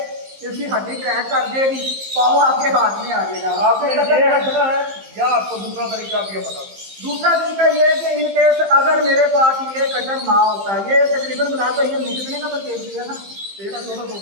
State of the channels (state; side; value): late; left; 15 ms